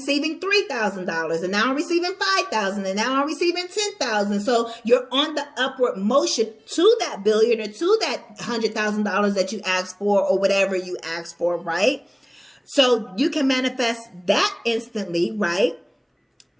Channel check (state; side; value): identical; both; correlation 1.00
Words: $3,000 and now I'm receiving $5,000 and now I'm receiving $10,000. So you're on the upward motion to that billion or to that $100,000 that you asked for or whatever you asked for, right? So you can manifest that instantly, right?